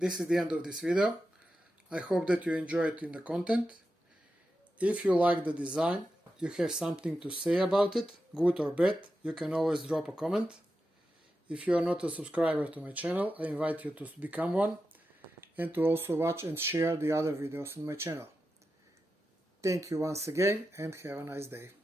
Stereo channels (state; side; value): normal; both; correlation 0.90